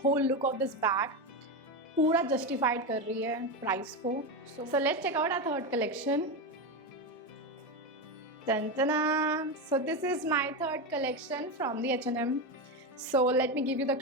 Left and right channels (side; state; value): both; normal; correlation 0.14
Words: look of this bag, पूरा जस्टिफाइड कर रही है प्राइस को। So let's check out our third collection. So this is my third collection from the H&M. So let me give you the